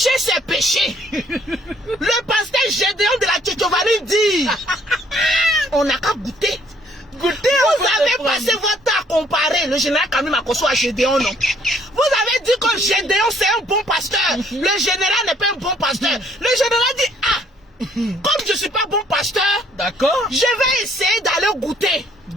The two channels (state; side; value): normal; both; correlation 0.63